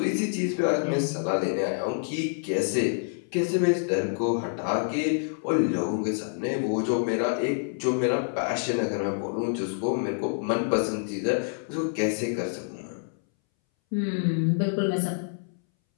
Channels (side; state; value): right; silent; 60 dB below the other